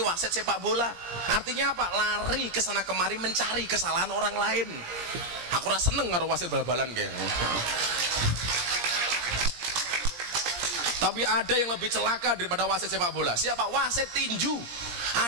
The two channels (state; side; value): late; left; 17 ms